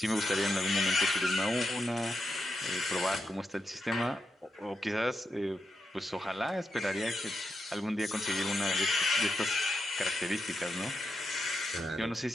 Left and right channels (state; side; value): normal; both; correlation 0.85